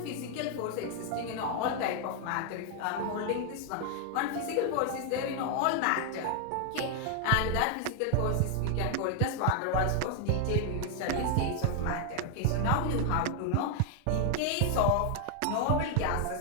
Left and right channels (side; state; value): both; different; correlation 0.00